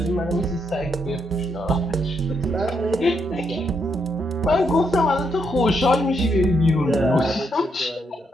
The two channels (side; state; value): both; normal; correlation 0.77